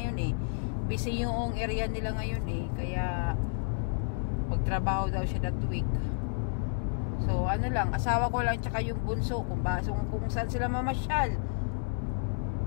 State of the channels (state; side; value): silent; right; digital silence